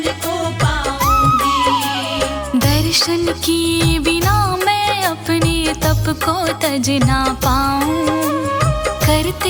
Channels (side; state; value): both; identical; correlation 1.00